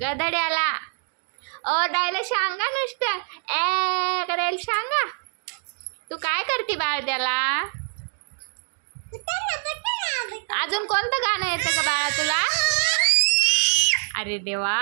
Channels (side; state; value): left; silent; digital silence